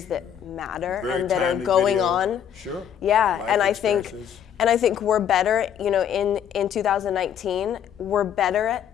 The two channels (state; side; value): quieter; right; 9.1 dB